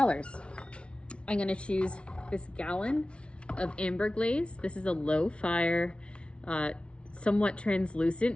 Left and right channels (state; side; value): late; right; 0.059 ms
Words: I'm going to choose this gallon of amber glaze. This is a low fire, somewhat translucent,